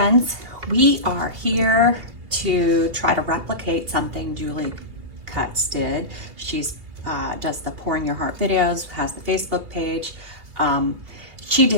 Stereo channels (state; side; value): late; left; 2.7 ms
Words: we are here to try to replicate something Julie Cutts did. She's does the Pouring Your Heart videos, has the Facebook page. She